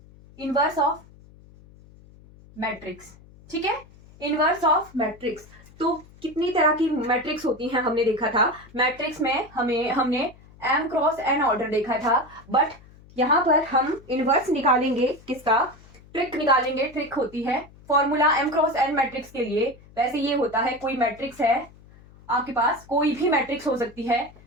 inverse of matrix. ठीक है, इनवर्स ऑफ मैट्रिक्स। तो कितनी तरह की मैट्रिक्स होती हैं हमने देखा था। मैट्रिक्स में हमने m क्रॉस n ऑर्डर देखा था, बट यहाँ पर हम इनवर्स निकालेंगे। किसका? ट्रिक निकालेंगे। ट्रिक होती है formula m cross n matrix के लिए। वैसे ये होता है, कोई मैट्रिक्स है आपके पास, कोई भी मैट्रिक्स हो सकती है।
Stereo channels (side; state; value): left; noise; hum, 24 dB below the sound